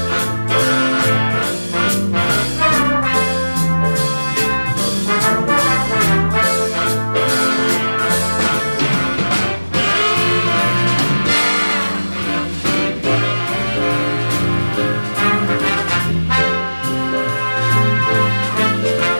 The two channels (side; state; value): both; inverted; correlation -1.00